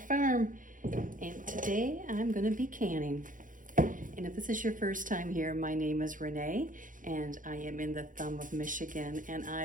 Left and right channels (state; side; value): late; left; 0.39 ms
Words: and today I'm going to be canning. And if this is your first time here, my name is Renee, and I am in the thumb of Michigan, and